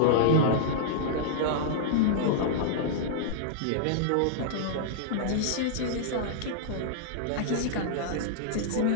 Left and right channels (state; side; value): different; both; correlation -0.02